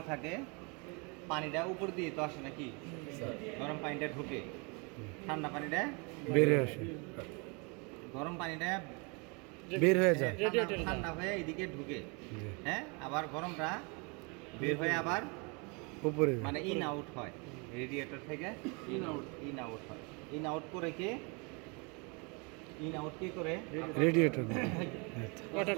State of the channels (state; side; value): quieter; left; 31.7 dB